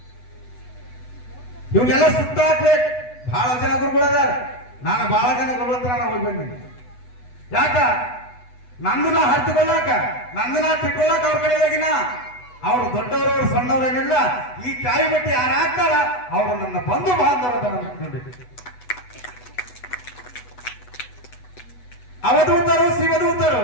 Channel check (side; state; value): right; late; 8.0 ms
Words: ಇವನ್ನೆಲ್ಲ ಸುಟ್ಟಾಕ್ಬೇಕು. ಬಹಳ ಜನ ಗುರುಗಳದಾರ. ನಾನು ಬಹಳ ಜನ ಗುರುಗಳ ಹತ್ರ ನಾವು ಹೋಗಿ ಬಂದಿನಿ. ಯಾಕ? ನಂದನ್ನ ಹರಿದುಕೊಳ್ಳಾಕ, ನಂದನ್ನ ತಿಳ್ಕೊಳ್ಳಾಕ ಅವ್ರ ಕಡೆಯಾಗಿನ ಅವರು ದೊಡ್ಡವರು ಸಣ್ಣವರೇನಿಲ್ಲ. ಈ ಕಾಯಿ ಬಟ್ಟಿ ಯಾರು ಹಾಕ್ತಾರ ಅವರು ನನ್ನ ಬಂಧು ಬಾಂಧವರ ನೋಡಿ. ಅವಧೂತರು ಶಿವದೂತರು.